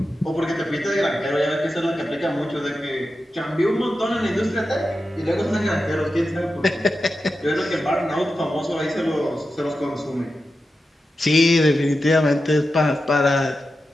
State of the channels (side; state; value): both; normal; correlation 0.91